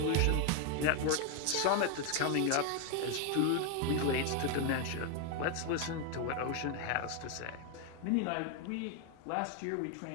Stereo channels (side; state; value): both; different; correlation 0.01